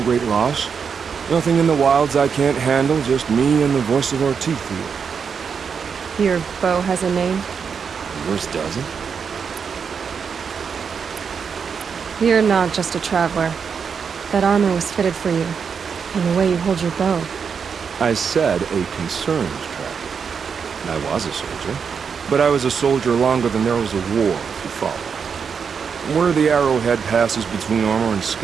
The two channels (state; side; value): quieter; left; 6.4 dB